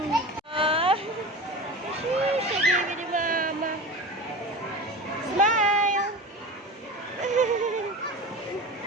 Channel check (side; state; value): both; normal; correlation 0.30